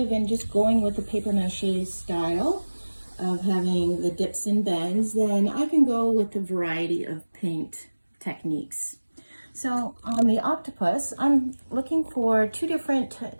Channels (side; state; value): both; inverted; correlation -1.00